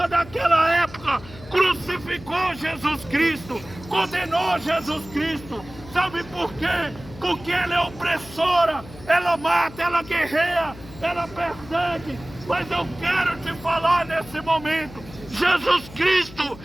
daquela época crucificou Jesus Cristo, condenou Jesus Cristo. Sabe por quê? Porque ela é opressora, ela mata, ela guerreia, ela persegue. Mas eu quero te falar nesse momento, Jesus Cristo,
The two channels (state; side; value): noise; left; hum, 17 dB below the sound